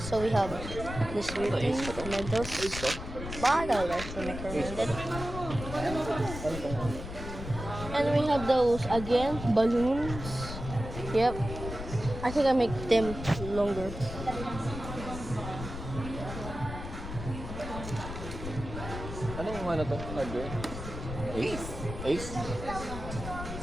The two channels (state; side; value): noise; left; rumble, 8 dB below the sound